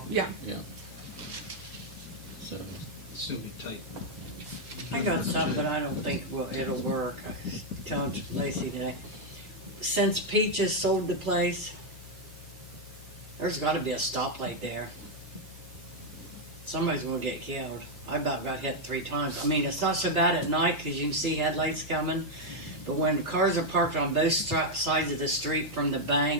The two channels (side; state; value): both; normal; correlation 0.00